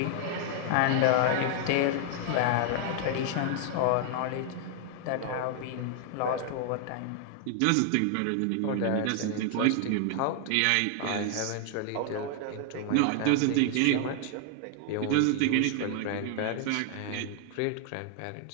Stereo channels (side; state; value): both; different; correlation 0.00